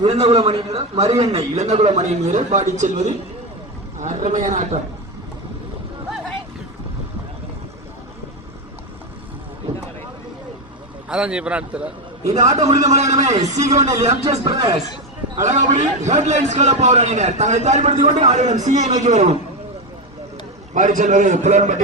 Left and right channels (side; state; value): both; normal; correlation 0.12